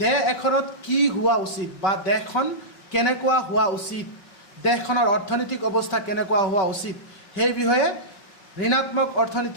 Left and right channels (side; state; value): right; late; 5.3 ms